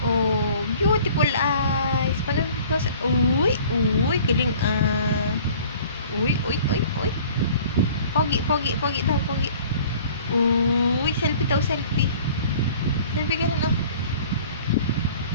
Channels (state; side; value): inverted; both; correlation -0.49